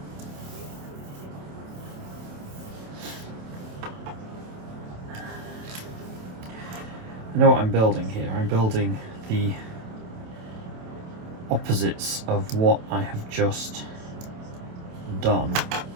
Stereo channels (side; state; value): left; late; 27 ms